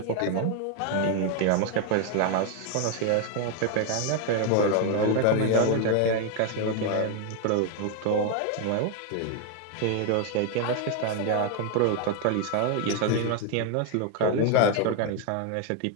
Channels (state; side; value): different; both; correlation 0.01